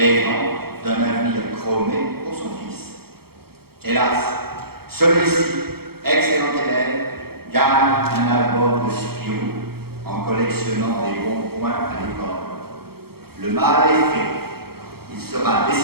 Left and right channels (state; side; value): late; left; 0.95 ms